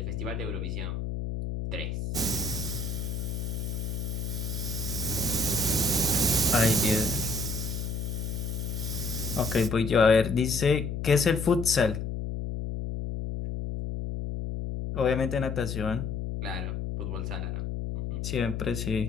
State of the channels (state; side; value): noise; left; hum, 3 dB below the sound